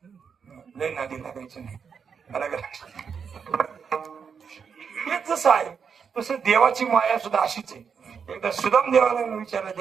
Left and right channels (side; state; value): left; quieter; 6.5 dB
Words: लय नादी लागायचं नाही. मला हेच जसं आहे तसं देवाची माया सुद्धा अशीच आहे. एकदा सुदाम देवाला विचारलं,